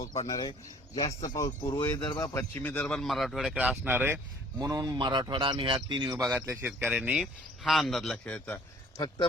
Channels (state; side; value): normal; both; correlation 0.55